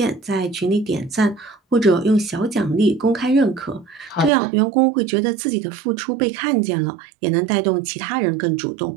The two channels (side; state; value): left; drops out; at 4.3 s